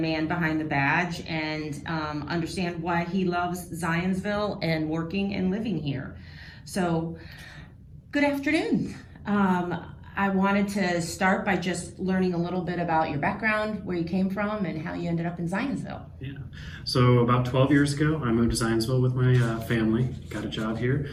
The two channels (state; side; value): identical; both; correlation 1.00